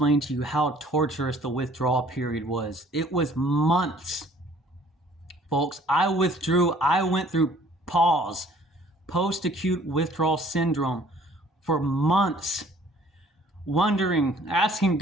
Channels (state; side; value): normal; both; correlation 0.56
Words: to you how torturous the withdrawal period was. It was months. Folks, I went through PAWS, post-acute withdrawal syndrome, for months, wondering, asking